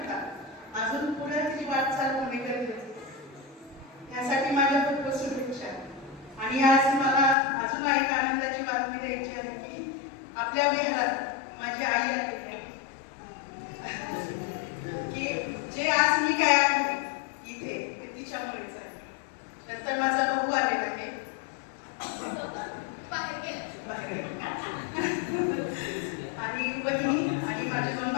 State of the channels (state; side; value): drops out; right; at 7.4 s